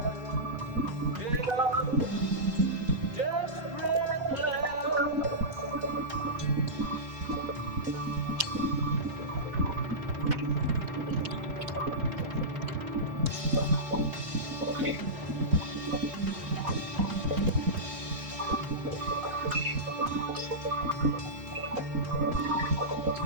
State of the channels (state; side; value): late; left; 4.1 ms